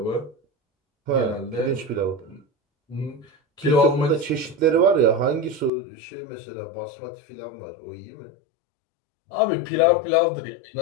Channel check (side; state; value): right; drops out; at 5.7 s